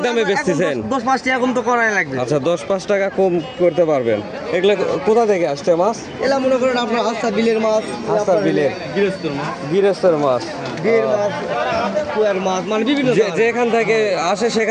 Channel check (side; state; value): both; identical; correlation 1.00